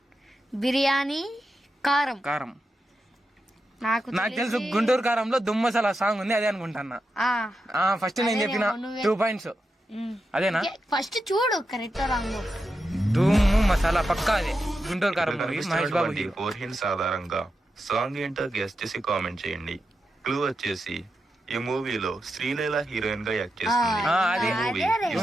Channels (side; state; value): both; normal; correlation 0.88